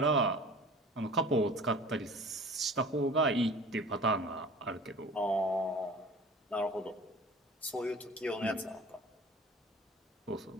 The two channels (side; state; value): both; normal; correlation 0.42